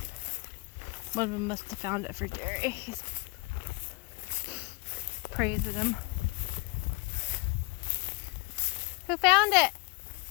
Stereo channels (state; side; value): quieter; right; 27.1 dB